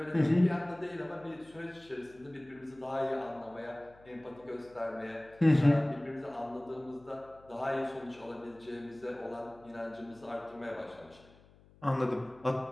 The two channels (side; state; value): left; noise; hum, 26 dB below the sound